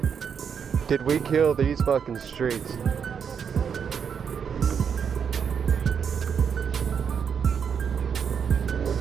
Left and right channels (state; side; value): quieter; left; 7.1 dB